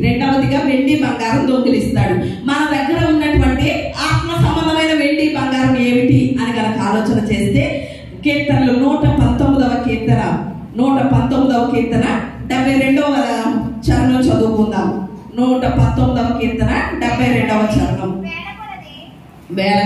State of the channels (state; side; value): identical; both; correlation 1.00